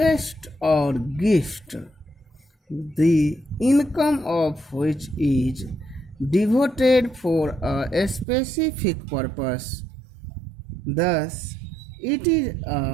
or gift, the income of which is devoted for a specific purpose. Thus, it is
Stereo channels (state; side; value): drops out; left; at 8.2 s